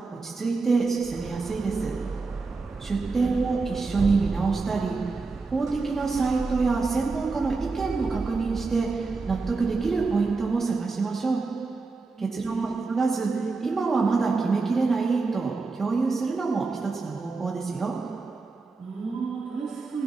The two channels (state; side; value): quieter; left; 4.0 dB